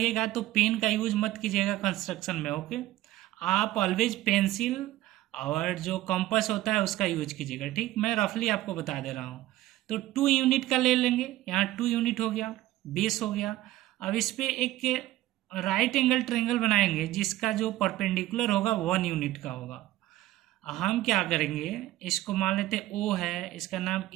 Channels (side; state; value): left; quieter; 15.5 dB